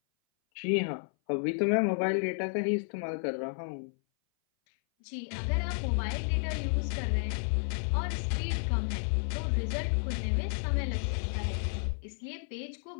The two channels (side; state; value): right; silent; 57 dB below the other